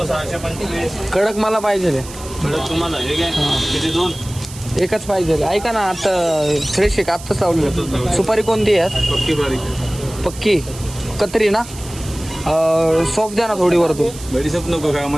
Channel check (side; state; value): right; noise; hiss, 15 dB below the sound